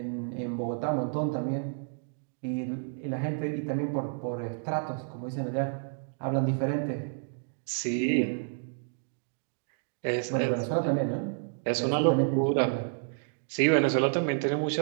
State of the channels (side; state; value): left; silent; digital silence